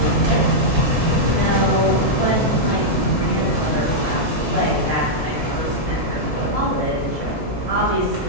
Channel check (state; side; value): normal; both; correlation -0.05